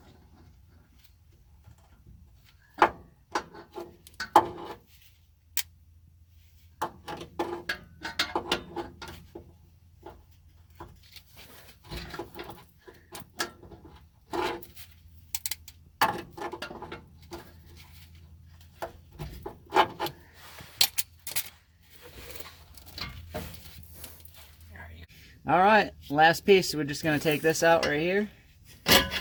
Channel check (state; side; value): identical; both; correlation 1.00